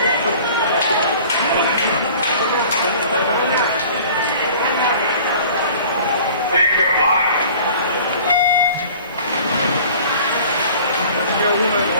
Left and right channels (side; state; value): both; inverted; correlation -0.46